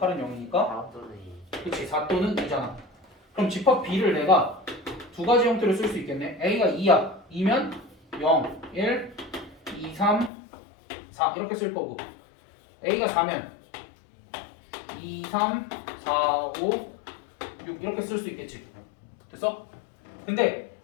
0이니까 그치 4 또는 2잖아. 그럼 집합 B를 내가 두 가지 형태로 쓸 수 있겠네. A가 2야. 2면 0, 1, 2, 3, 4 이렇게 쓸 거고 A가 4면 2, 3, 4, 5, 6 이렇게 쓸 수 있겠지. 됐어? 근데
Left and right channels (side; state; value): right; drops out; at 10.3 s